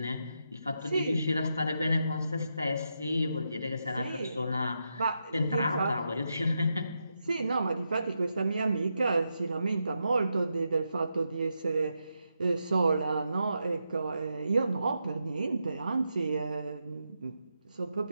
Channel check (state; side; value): inverted; both; correlation -0.85